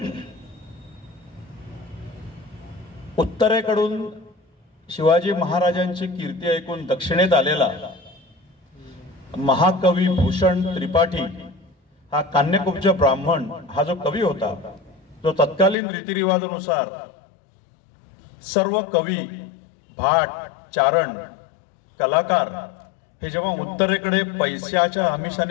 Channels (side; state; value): right; drops out; at 15.8 s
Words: उत्तरेकडून शिवाजी महाराजांची कीर्ती ऐकून दक्षिणेत आलेला महाकवी भूषण त्रिपाठी हा कान्यकुब्ज ब्राह्मण हा जो कवी होता, जो तत्कालीन रीतिरिवाजानुसार सर्व कवी, भाट, चारण, कलाकार हे जेव्हा उत्तरेकडे पैशाच्या